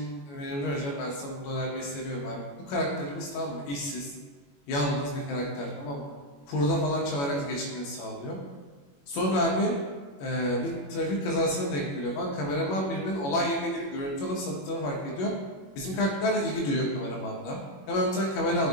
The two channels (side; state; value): right; late; 21 ms